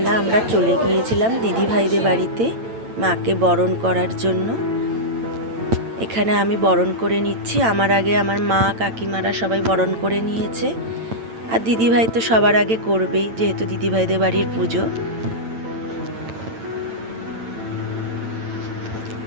আমরা চলে গিয়েছিলাম দিদিভাইদের বাড়িতে মাকে বরণ করার জন্য। এখানে আমি বরণ করে নিচ্ছি, আমার আগে আমার মা কাকিমারা সবাই বরণ করে নিয়েছে। আর দিদিভাই তো সবার আগে করবেই, যেহেতু দিদিভাইদের বাড়ির পুজো।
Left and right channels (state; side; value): late; left; 8.9 ms